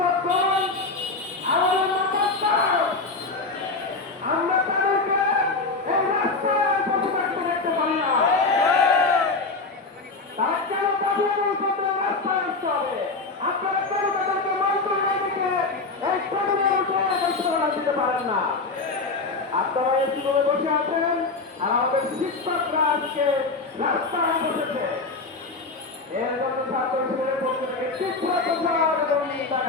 আমাদের মাতার, আমরা তাদেরকে এই রাস্তায় বসে থাকতে দেখতে পারি না। তার কেন পাঠিয়ে করতে রাস্তায় আসতে হবে? আপনারা কেন তাদেরকে মন্ত্রণালয় থেকে এই টেবিলে বসে ঘোষণা দিতে পারেন না? আপনারা এসি করে বসে আছেন আর আমাদের শিক্ষকরা আজকে রাস্তায় বসেছে। এর জন্য ছাত্র শিবিরের পক্ষ থেকে তীব্র প্রচার এবং নিন্দা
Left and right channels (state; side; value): quieter; right; 3.7 dB